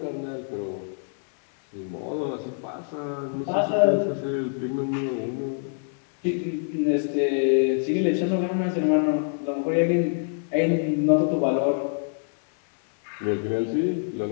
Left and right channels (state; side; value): silent; right; 61 dB below the other